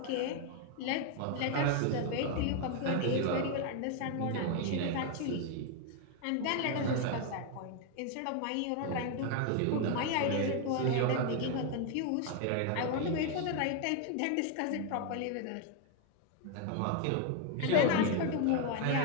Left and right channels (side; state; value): both; different; correlation 0.01